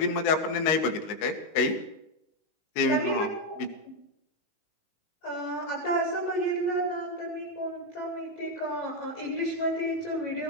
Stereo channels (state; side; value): late; right; 19 ms